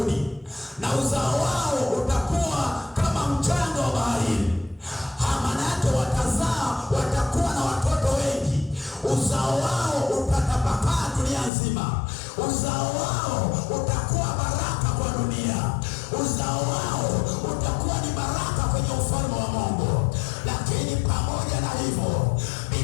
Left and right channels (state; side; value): drops out; right; at 11.5 s